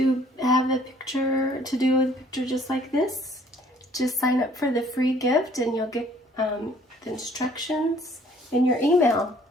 have a picture, to do a picture just like this, just sign up for the free gift and you'll get the instructions in your email.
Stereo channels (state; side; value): normal; both; correlation 0.58